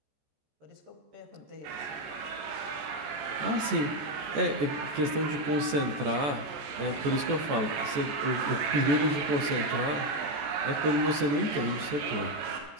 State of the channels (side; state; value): left; late; 14 ms